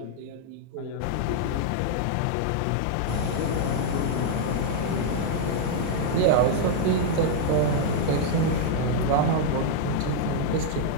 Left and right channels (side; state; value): both; different; correlation -0.01